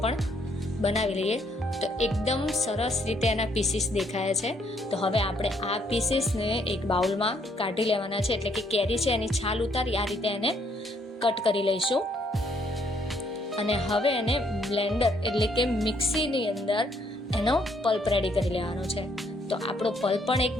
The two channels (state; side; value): normal; both; correlation 0.69